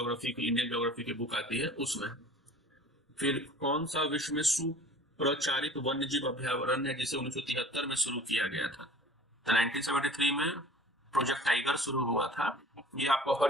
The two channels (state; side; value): normal; both; correlation 0.46